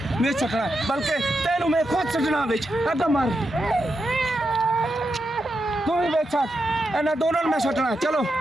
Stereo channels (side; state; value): both; normal; correlation 0.86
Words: सुटना, बल्कि तेनू मैं खुद सुटना विच। अगा मार, तू ही बेच सट, इन्हां दोनों मैं सुटना। चलो